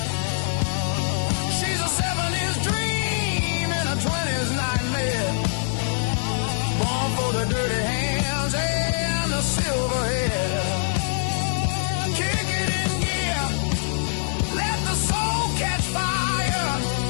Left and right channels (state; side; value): silent; right; digital silence